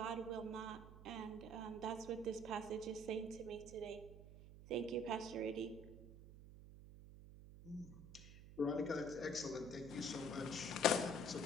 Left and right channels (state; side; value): noise; right; hum, 14 dB below the sound